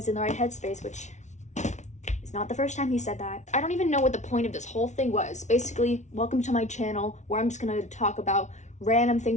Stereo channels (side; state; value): right; late; 0.34 ms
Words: in the right headspace, which is not the first time he said that. I don't even know what the point of this whole thing was. Basically, welcome to my channel where I'm just going to talk about random